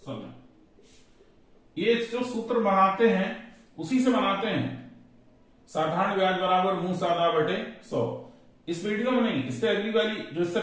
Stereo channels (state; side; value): identical; both; correlation 1.00